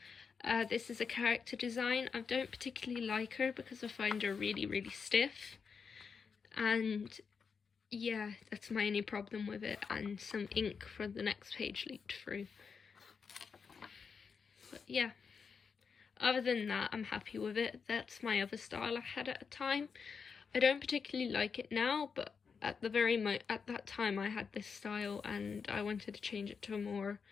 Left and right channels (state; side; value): quieter; right; 5.8 dB